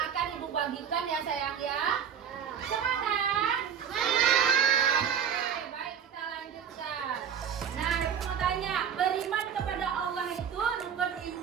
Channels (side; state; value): left; quieter; 7.9 dB